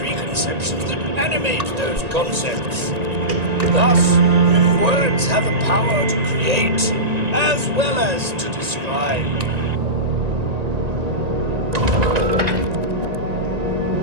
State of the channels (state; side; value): late; left; 1.9 ms